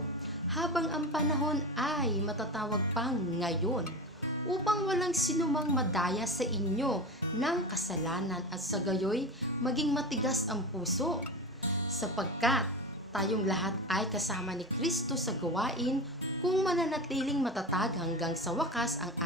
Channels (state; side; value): normal; both; correlation 0.25